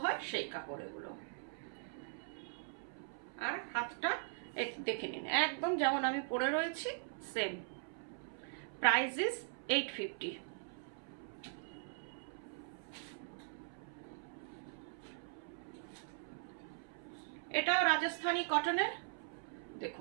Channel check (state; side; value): silent; left; 51 dB below the other